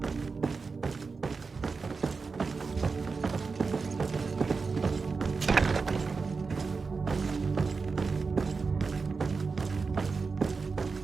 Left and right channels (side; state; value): left; quieter; 4.6 dB